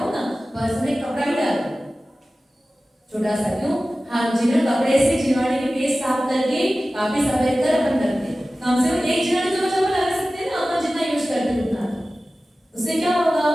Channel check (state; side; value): normal; both; correlation 0.96